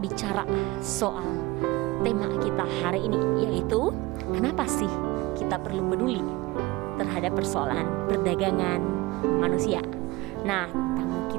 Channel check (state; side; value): quieter; left; 20.7 dB